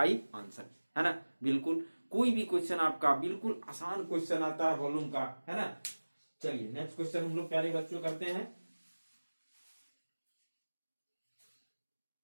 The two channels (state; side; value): inverted; both; correlation -1.00